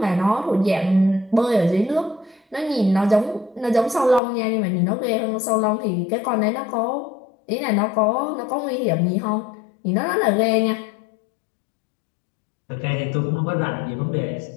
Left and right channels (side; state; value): right; drops out; at 4.2 s